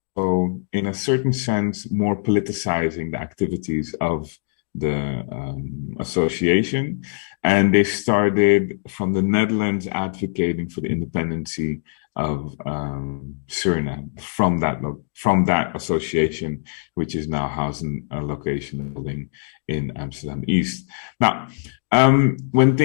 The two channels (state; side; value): silent; right; digital silence